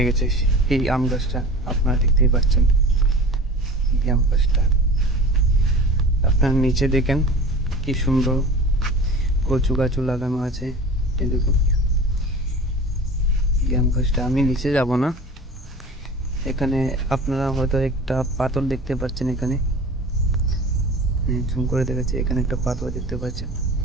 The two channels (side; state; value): both; normal; correlation 0.38